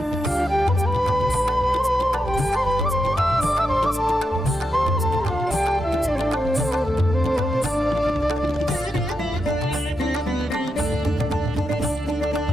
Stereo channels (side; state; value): both; normal; correlation 0.85